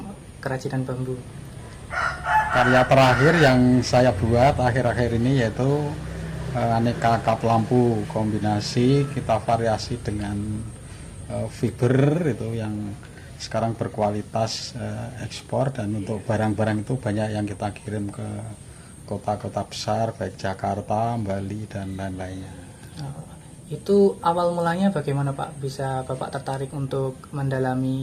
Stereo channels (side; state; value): both; identical; correlation 1.00